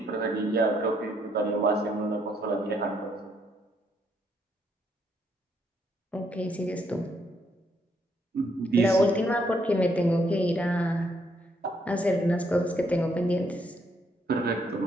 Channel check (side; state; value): both; normal; correlation 0.72